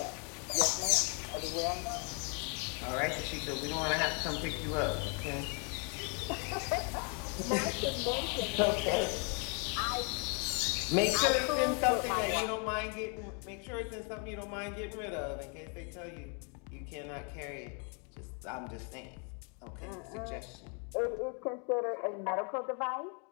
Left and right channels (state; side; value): quieter; right; 37.5 dB